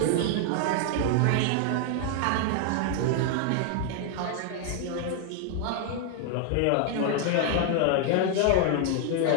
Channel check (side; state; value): both; different; correlation 0.00